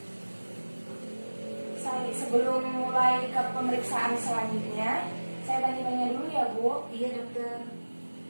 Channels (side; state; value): both; inverted; correlation -1.00